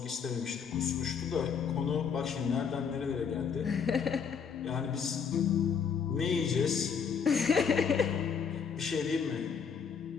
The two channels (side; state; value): right; quieter; 6.6 dB